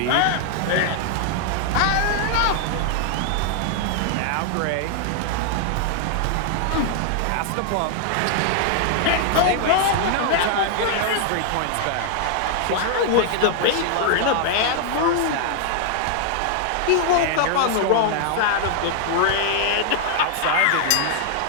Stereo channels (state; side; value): different; both; correlation 0.00